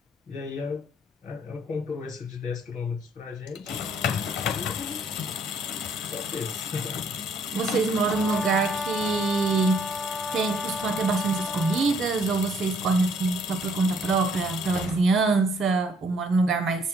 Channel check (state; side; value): normal; both; correlation 0.64